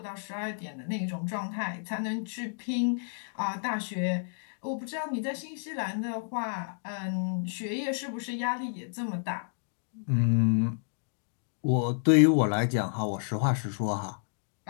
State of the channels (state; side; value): silent; right; digital silence